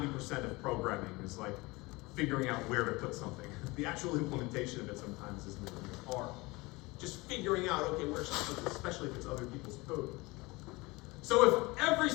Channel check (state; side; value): quieter; right; 23.3 dB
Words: of programming, is like figuring out where to put something. The actual implementation of it sometimes isn't hard. Just figuring out, okay, where should I put this, especially if it's other people's code. So if every